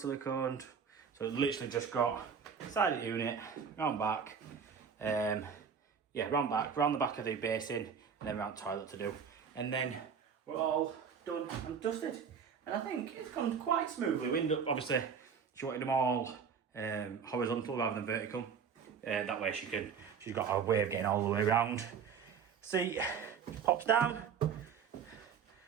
siliconed. So it literally just got side of the unit, round back, round back, round the back of the basin, and then round toilet to do. And then we're all done and dusted. And I think it's gone quite smoothly. We ended up, obviously, she wanted them all horizontal rather than vertical. That way she's got a way of getting all the way around. Seat pops down,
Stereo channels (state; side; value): quieter; left; 6.7 dB